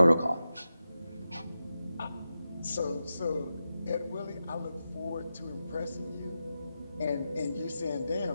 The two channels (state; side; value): inverted; both; correlation -0.90